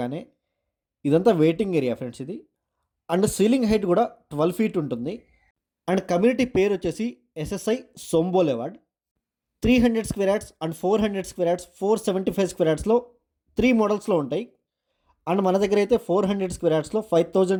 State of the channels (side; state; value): both; identical; correlation 1.00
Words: ఇదంతా వెయిటింగ్ ఏరియా ఫ్రెండ్స్ ఇది. అండ్ సీలింగ్ హైట్ కూడా 12 ఫీట్ ఉంటుంది. అండ్ కమ్యూనిటీ పేరు వచ్చేసి ఎస్ఎస్ఐ సోంబోలేవాడ్. 300 square yards and 400 square yards 475 square యార్డ్స్లో 3 మోడల్స్లో ఉంటాయి. అండ్ మన దగ్గర అయితే 400 స్క్వేర్ యార్డ్స్లో